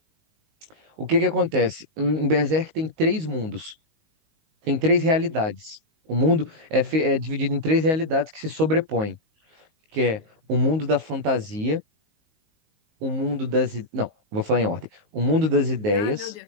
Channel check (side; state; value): left; late; 19 ms